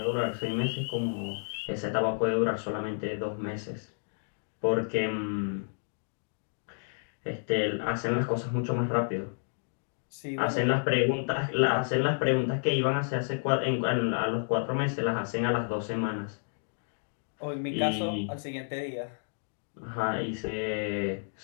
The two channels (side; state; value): right; silent; digital silence